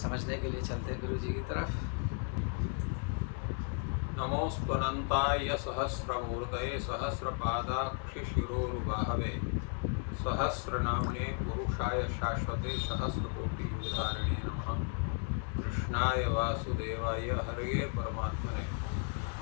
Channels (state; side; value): quieter; right; 38.8 dB